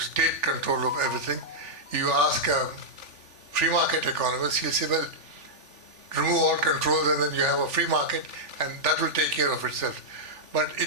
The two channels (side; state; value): left; late; 3.4 ms